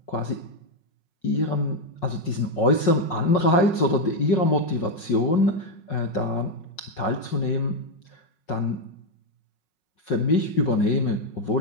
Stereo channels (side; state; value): right; late; 5.5 ms